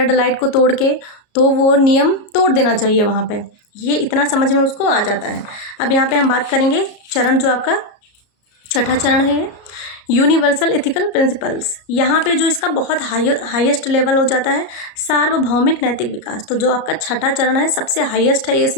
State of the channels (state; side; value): late; right; 33 ms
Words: लाइट को तोड़ के, तो वो नियम तोड़ देना चाहिए वहाँ पे। ये इतना समझ में उसको आ जाता है। अब यहाँ पे हम बात करेंगे चरण जो आपका 6ठा चरण है, यूनिवर्सल एथिकल प्रिंसिपल्स, यहाँ पे जो इसका बहुत हाईएस्ट लेवल हो जाता है सार्वभौमिक नैतिक विकास। तो जो आपका छठा चरण है सबसे हाईएस्ट है ये